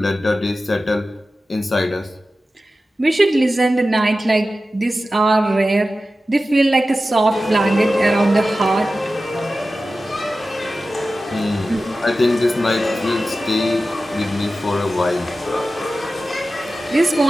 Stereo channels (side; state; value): both; normal; correlation 0.94